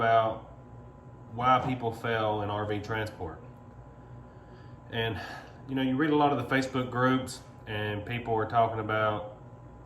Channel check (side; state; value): both; identical; correlation 1.00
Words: why people fail in RV transport. And you read a lot of the Facebook groups and people are talking about,